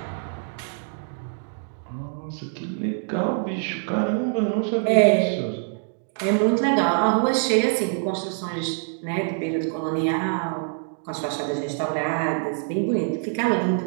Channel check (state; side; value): silent; left; 62 dB below the other